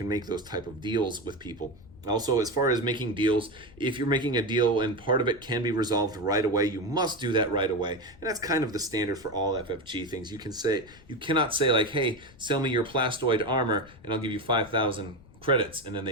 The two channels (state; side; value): noise; left; rumble, 23 dB below the sound